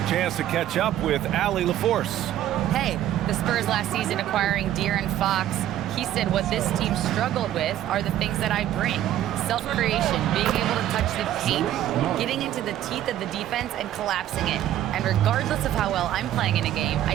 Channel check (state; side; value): quieter; left; 12.3 dB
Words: chance to catch up with Allie LaForce. Hey, the Spurs last season acquiring De'Aaron Fox. He said what this team struggled with are the things that I bring. Self-creation, being able to touch the paint, getting into the teeth of the defense and collapsing it. And regardless of how well I'm playing in a game, I